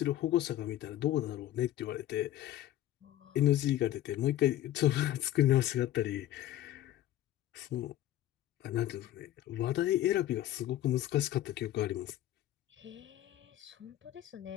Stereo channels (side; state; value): right; quieter; 13.4 dB